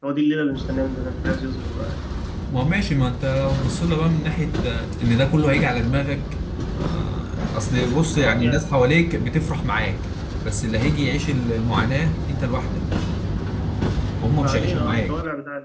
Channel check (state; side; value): identical; both; correlation 1.00